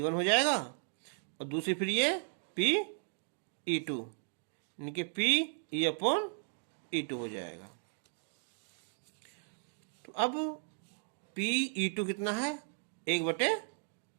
हो जाएगा और दूसरी फिर ये PE2 इनके PE अपॉन E2 हो जाएगा। तो अब PE2 कितना है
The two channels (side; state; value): left; silent; digital silence